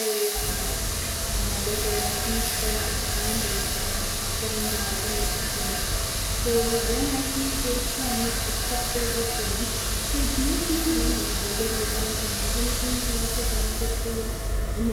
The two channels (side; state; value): both; identical; correlation 1.00